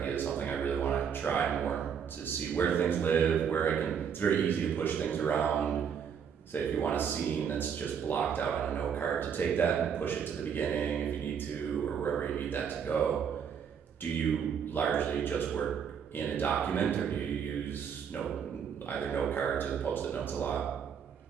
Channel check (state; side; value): quieter; left; 7.5 dB